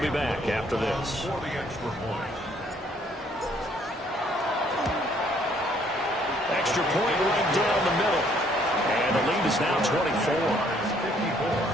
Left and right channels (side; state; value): both; normal; correlation 0.64